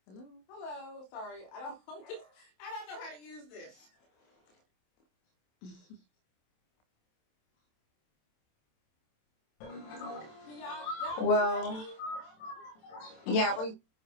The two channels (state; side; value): late; right; 27 ms